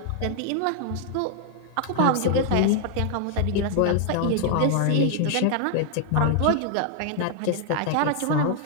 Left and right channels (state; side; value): different; both; correlation 0.00